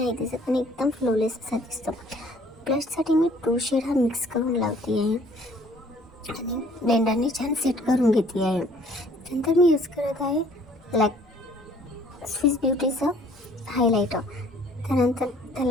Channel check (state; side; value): normal; both; correlation 0.58